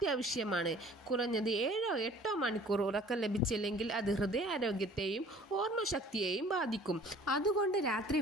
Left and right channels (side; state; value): both; normal; correlation 0.51